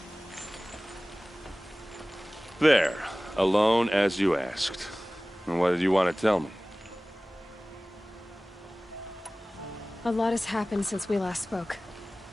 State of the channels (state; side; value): normal; both; correlation 0.98